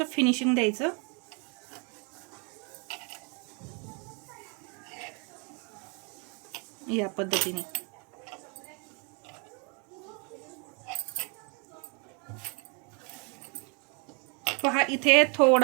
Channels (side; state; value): left; quieter; 34.1 dB